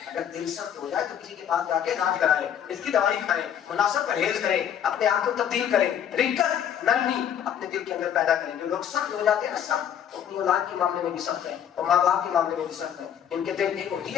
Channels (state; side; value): quieter; right; 9.3 dB